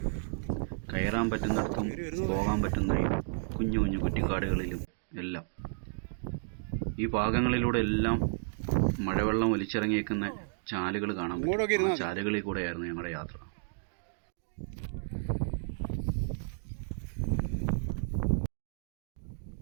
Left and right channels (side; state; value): left; silent; digital silence